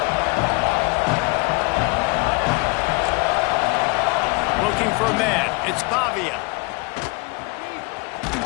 Looking for a man. It's Pavia.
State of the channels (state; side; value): quieter; right; 27.4 dB